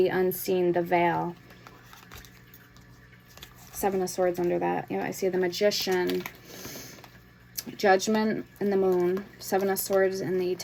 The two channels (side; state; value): both; identical; correlation 1.00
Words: unseen, the veil. Seven of Swords under that. You know, I see the Magician, Judgment, and the Moon. Seven of Swords and the